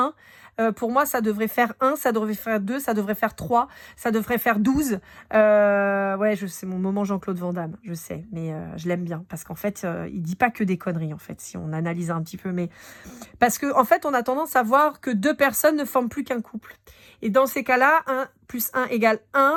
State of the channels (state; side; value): identical; both; correlation 1.00